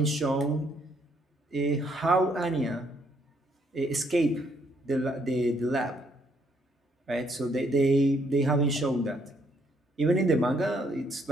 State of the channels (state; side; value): normal; both; correlation 0.70